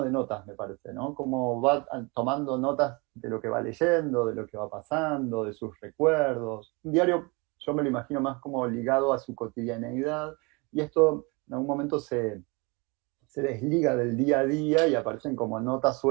de notas, me parece, ¿no? Como va tomando notas de lo que va leyendo, de lo que va pasando, de sus recuerdos. Un diario, yo me lo imagino más como ligado a su cotidianeidad, y esto en algún momento se desliga del día a día y aparecen como notas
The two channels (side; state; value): left; quieter; 28.5 dB